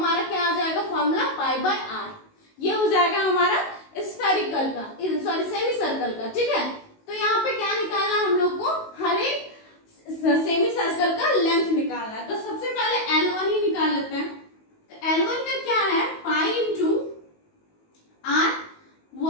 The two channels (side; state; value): right; late; 19 ms